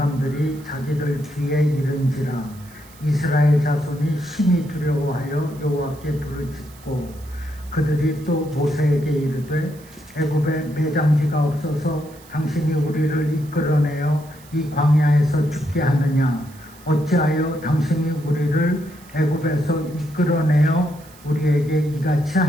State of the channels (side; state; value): right; noise; hiss, 24 dB below the sound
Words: 자기들 뒤에 이른지라. 이스라엘 자손이 심히 두려워하여 여호와께 불을 짓고 그들이 또 모세에게 이르되 애굽에 매장지가 없어서 당신이 우리를 이끌어내어 이 광야에서 죽게 하느냐. 어찌하여 당신이 우리를 애굽에서 이끌어내어 우리에게 이같이